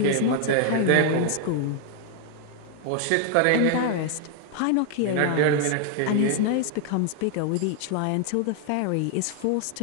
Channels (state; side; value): different; both; correlation 0.00